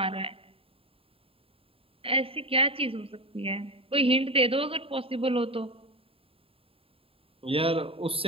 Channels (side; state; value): left; late; 0.27 ms